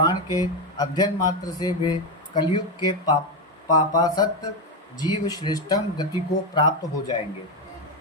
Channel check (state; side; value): normal; both; correlation 0.09